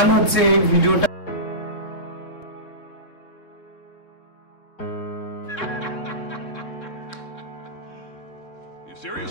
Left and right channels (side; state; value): right; late; 3.9 ms